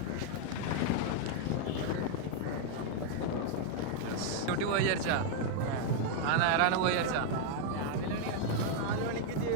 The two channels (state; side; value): different; both; correlation 0.00